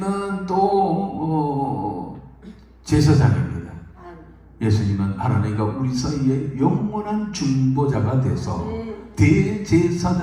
또 제사장입니다. 예수님은 하나님과 우리 사이에 영원한 중보자가 돼서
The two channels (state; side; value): identical; both; correlation 1.00